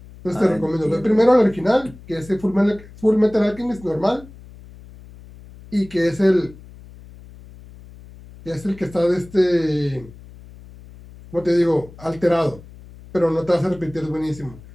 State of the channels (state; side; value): noise; left; hum, 20 dB below the sound